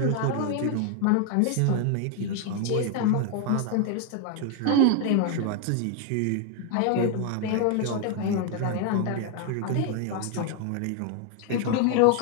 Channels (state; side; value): different; both; correlation 0.01